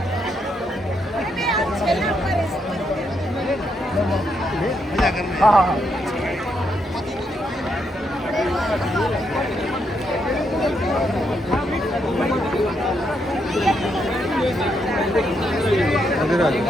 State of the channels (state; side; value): normal; both; correlation 0.78